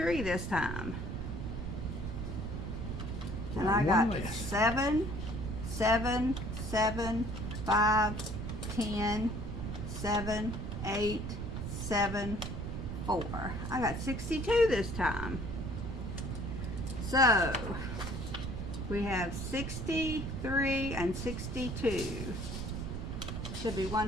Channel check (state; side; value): noise; right; rumble, 5 dB below the sound